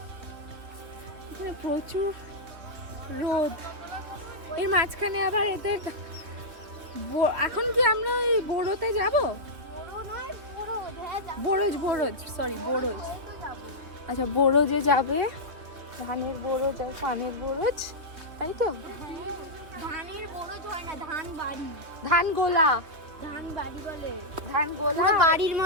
এখানে প্রচুর রোদ, এর মাঝখানে আবার এদের এখন কি আমরা ওই বোরোতে যাব? বোরোজ সরি বোরোজ। আচ্ছা বোরোজে যাবে, ধানের বোরোজ আর পানের বোরোজ, তাই তো? ধানের বরজ হয় না, ধান বাড়ি, ধান গোলা, ধান বাড়ি বলে, ধান গোলা পুরো বাড়ির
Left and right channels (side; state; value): left; late; 3.3 ms